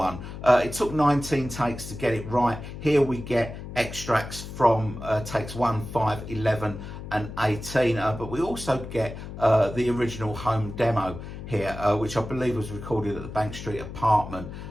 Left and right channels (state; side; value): noise; left; hum, 10 dB below the sound